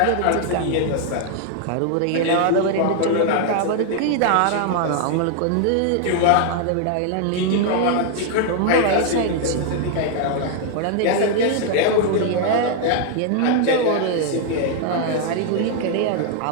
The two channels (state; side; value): different; both; correlation 0.00